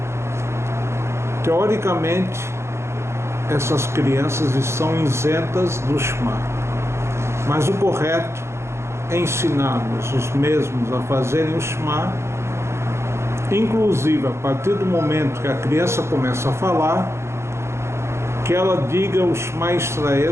teoricamente, essas crianças estão isentas do Shema. Mas o correto é ensinar-nos os mesmos a fazerem o Shema, inclusive a partir do momento que a criança começa a falar, que ela diga o Shema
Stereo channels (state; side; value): late; left; 0.13 ms